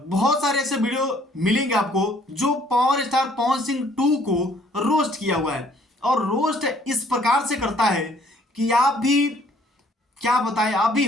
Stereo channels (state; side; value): normal; both; correlation 0.61